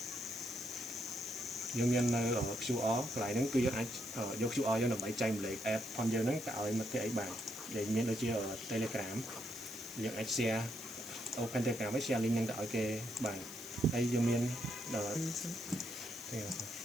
យើងមាននៅ QR កន្លែងហ្នឹងគឺយើងអាចយក QR យើងដើម្បីចែកម្លែក app ផងយើងហ្នឹងទៅឲ្យមិត្តភក្តិអីបានដែលមានដូចជា Telegram យើងអាច share open Telegram ហើយ share link ហ្នឹងទៅឲ្យគេបានហើយយើងមាន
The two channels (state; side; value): noise; left; hiss, 13 dB below the sound